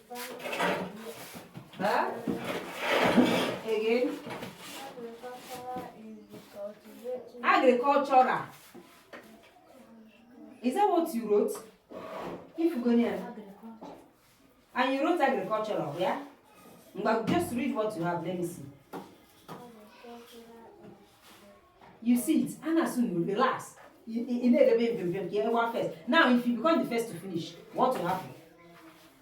Huh? Again? Agricultural. Is that what you wrote? If you go near. And you wrote agricultural, yeah? But just read what you have. Let me see. You see it. And as soon you relax. You first. Now, if you become the first to finish, what will happen?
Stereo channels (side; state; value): both; identical; correlation 1.00